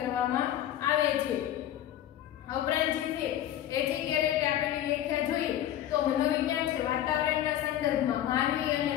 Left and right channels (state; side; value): quieter; right; 11.9 dB